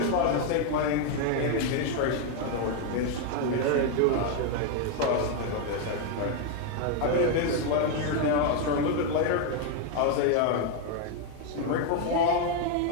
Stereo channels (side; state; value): both; different; correlation 0.01